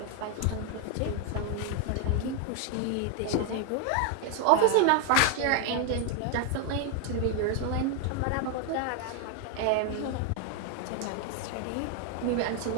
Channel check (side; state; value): both; different; correlation 0.00